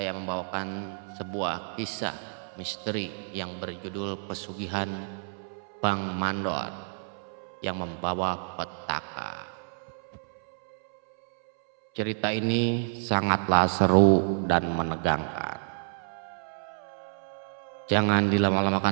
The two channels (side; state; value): left; silent; 59 dB below the other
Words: membawakan sebuah kisah misteri yang berjudul Pesugihan Bang Mandor yang membawa petaka. Cerita ini sangatlah seru dan menegangkan. Jangan